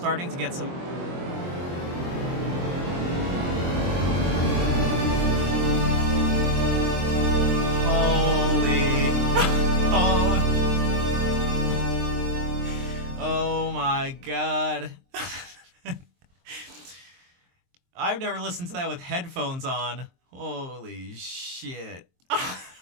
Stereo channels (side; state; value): left; late; 23 ms